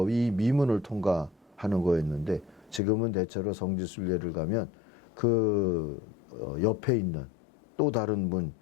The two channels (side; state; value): right; drops out; at 2.8 s